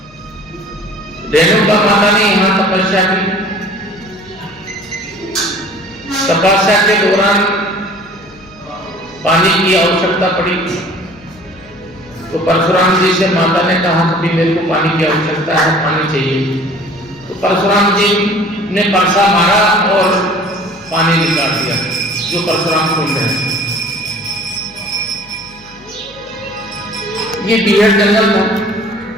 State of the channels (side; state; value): left; noise; hum, 26 dB below the sound